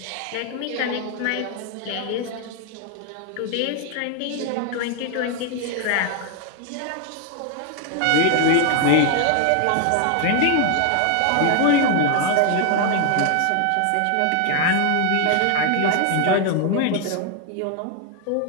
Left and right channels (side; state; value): both; different; correlation 0.00